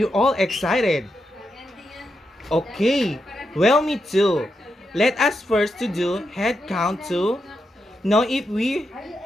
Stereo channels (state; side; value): normal; both; correlation 0.85